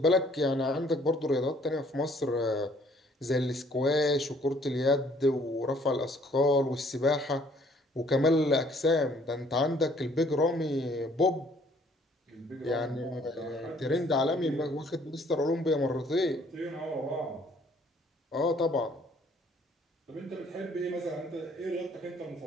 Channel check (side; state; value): both; normal; correlation 0.61